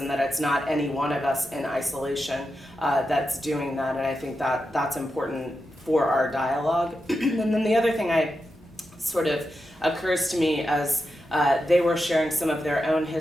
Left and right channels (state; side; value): normal; both; correlation 0.88